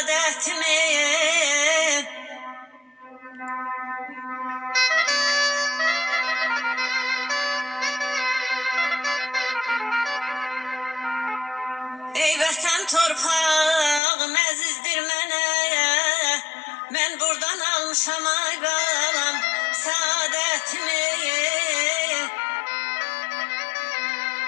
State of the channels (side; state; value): right; drops out; at 14.0 s